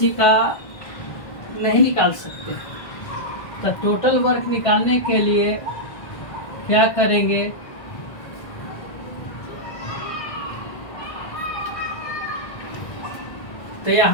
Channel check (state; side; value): late; right; 1.6 ms